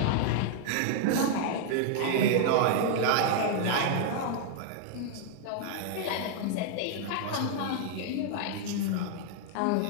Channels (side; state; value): both; different; correlation 0.00